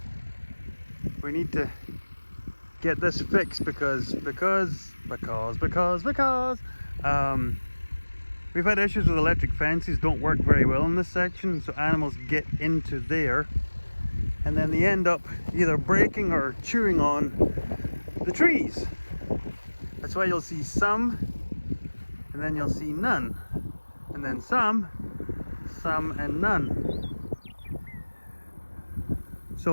need to get this fixed because we've had issues with electric fences, don't work very well in this section, so animals get into there and then they end up either breaking or chewing on the trees. That's why you'll see some, and then you'll see none, and then some and none.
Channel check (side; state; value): both; inverted; correlation -1.00